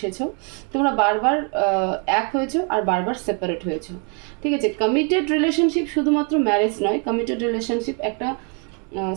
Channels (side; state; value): left; quieter; 37.4 dB